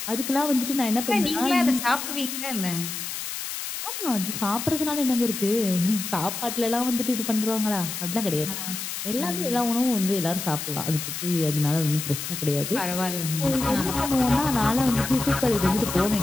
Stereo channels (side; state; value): left; noise; hiss, 6 dB below the sound